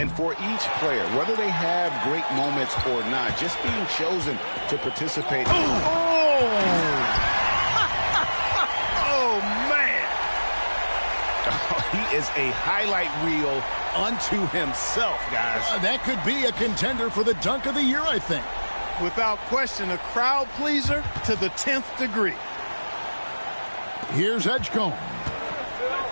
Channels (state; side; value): inverted; both; correlation -1.00